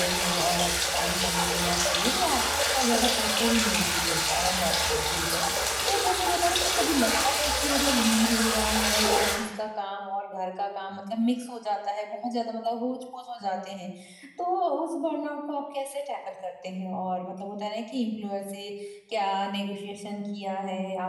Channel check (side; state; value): both; identical; correlation 1.00